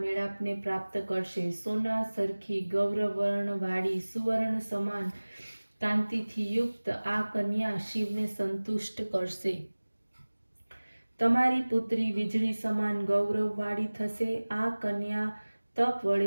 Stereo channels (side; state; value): both; inverted; correlation -1.00